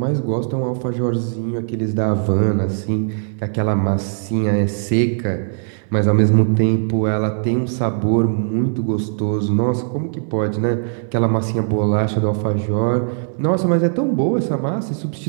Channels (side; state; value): left; silent; digital silence